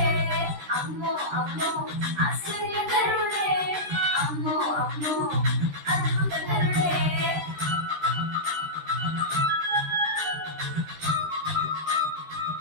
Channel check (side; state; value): left; late; 13 ms